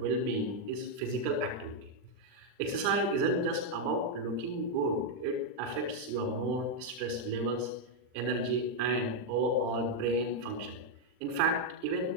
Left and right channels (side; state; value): left; late; 39 ms